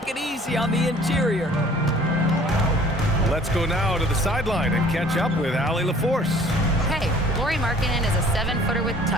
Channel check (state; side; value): normal; both; correlation 0.52